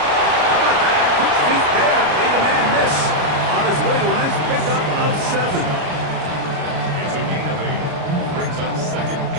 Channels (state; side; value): late; left; 33 ms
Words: about that? Quick feet there. Made a man miss. On his way to a nice pickup of 7. It's a gain of 8. Brings up 2nd